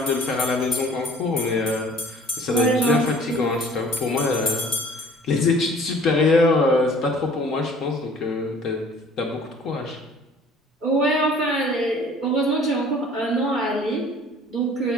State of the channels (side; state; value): both; normal; correlation 0.51